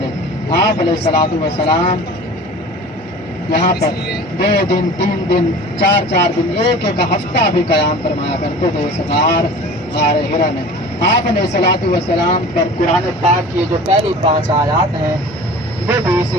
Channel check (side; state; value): both; normal; correlation 0.40